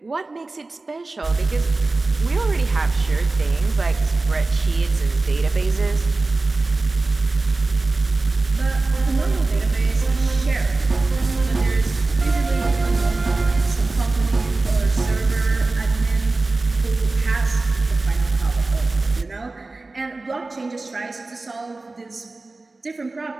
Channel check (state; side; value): quieter; left; 3.3 dB